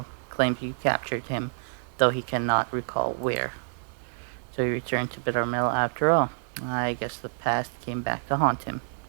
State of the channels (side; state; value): left; silent; digital silence